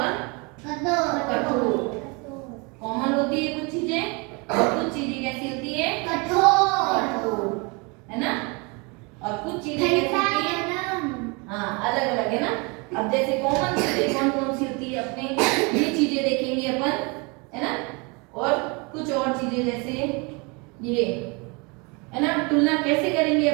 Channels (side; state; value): left; quieter; 29.7 dB